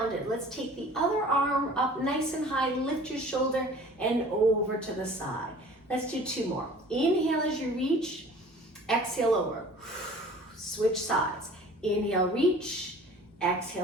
Let's take the other arm up nice and high. Lift your shoulder and over to the side. Let's do two more. Inhale as you reach. Exhale over. Switch sides. Inhale, reach.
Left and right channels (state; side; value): normal; both; correlation 0.47